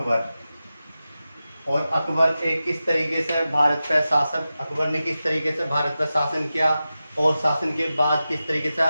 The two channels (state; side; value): inverted; both; correlation -0.93